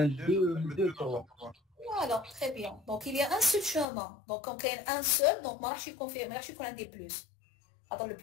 2 2 3. Voilà, très bien. Donc il y a un seul chemin. Donc quand il y a un seul, donc je suis confirmé, je suis qu'on a des plus. Alors le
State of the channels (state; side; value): drops out; right; at 3.9 s